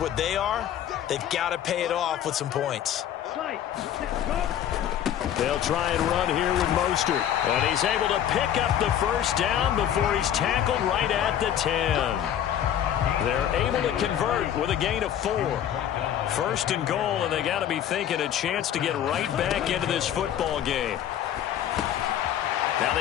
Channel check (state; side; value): quieter; right; 10.4 dB